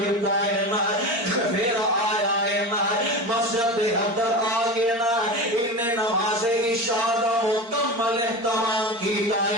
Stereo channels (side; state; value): left; late; 4.3 ms